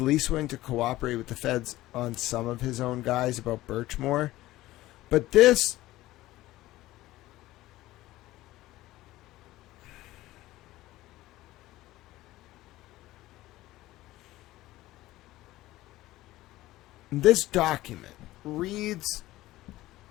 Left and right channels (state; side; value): quieter; right; 16.7 dB